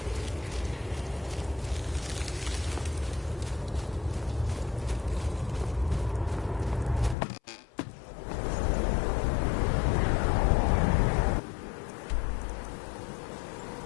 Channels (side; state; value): right; drops out; at 7.2 s